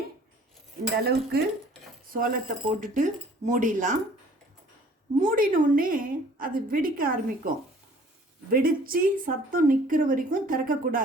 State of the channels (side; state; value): both; normal; correlation 0.53